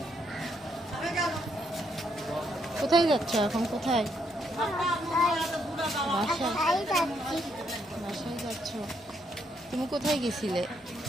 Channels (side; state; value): both; normal; correlation 0.75